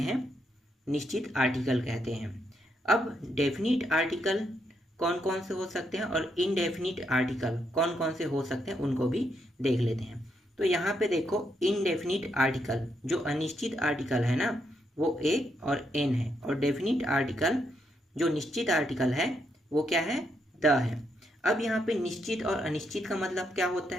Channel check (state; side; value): normal; both; correlation 0.78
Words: निश्चित आर्टिकल कहते हैं। अब डेफिनिट आर्टिकल कौन कौन से हो सकते हैं और इनडेफिनिट आर्टिकल कौन कौन से हो सकते हैं उनको भी देख लेते हैं। तो यहाँ पे देखो, इनडेफिनिट आर्टिकल जो अनिश्चित आर्टिकल है ना, वो ए और एन है। और डेफिनिट आर्टिकल जो निश्चित आर्टिकल है वो क्या है? द है। अब यहाँ पे निश्चित और अनिश्चित का मतलब क्या होता